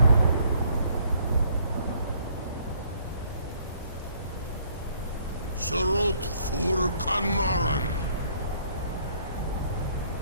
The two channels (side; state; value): both; inverted; correlation -0.63